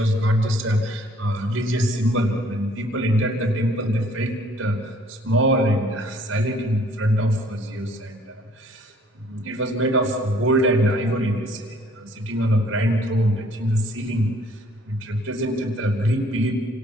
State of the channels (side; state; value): both; normal; correlation 0.59